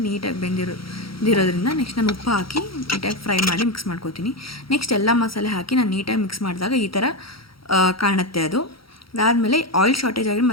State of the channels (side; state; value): right; late; 0.75 ms